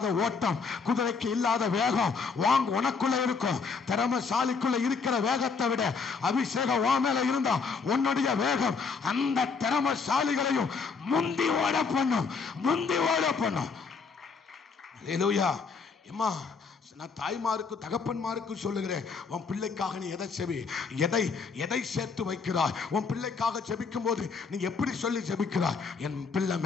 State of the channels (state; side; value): quieter; right; 5.1 dB